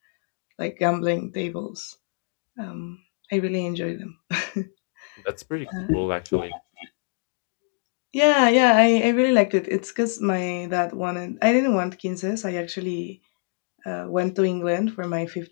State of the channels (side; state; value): right; silent; 62 dB below the other